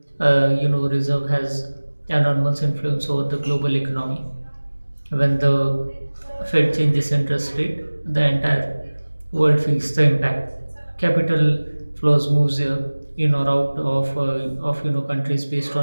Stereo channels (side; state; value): both; inverted; correlation -1.00